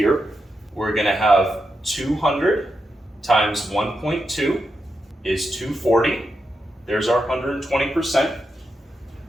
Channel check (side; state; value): both; normal; correlation 0.86